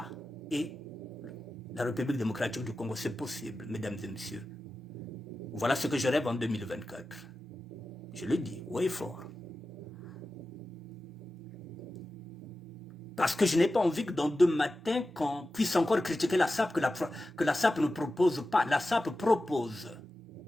et la République démocratique du Congo, c'est possible, mesdames et messieurs. Voilà ce que je rêve en 2024. Je le dis, haut et fort. Parce que je n'ai pas envie que dans 2 matins, qu'on puisse encore critiquer la SAP, que la SAP ne propose pas. La SAP propose.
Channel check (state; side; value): normal; both; correlation 0.93